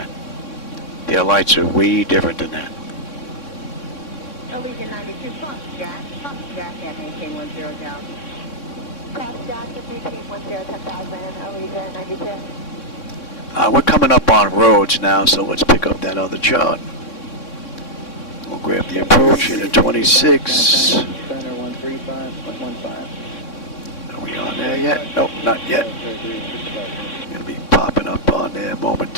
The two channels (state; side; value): late; right; 3.6 ms